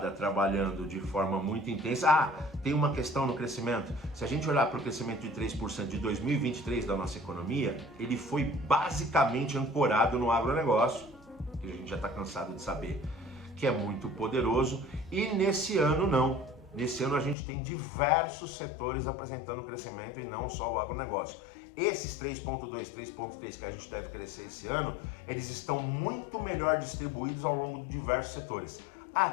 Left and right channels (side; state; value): right; drops out; at 17.4 s